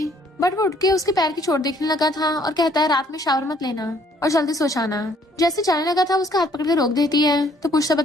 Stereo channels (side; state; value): both; normal; correlation 0.63